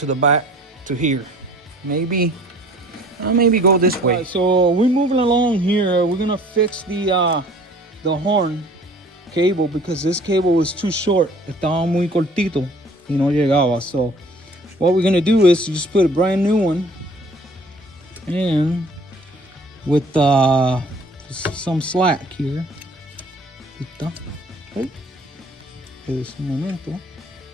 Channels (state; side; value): normal; both; correlation 0.52